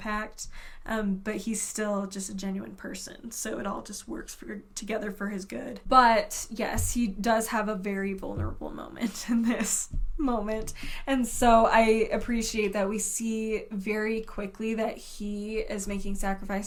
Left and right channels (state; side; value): identical; both; correlation 1.00